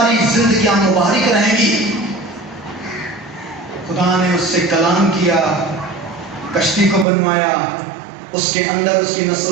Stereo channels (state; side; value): drops out; left; at 7.1 s